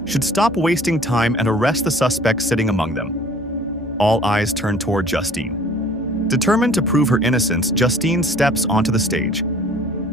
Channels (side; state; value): right; noise; hum, 25 dB below the sound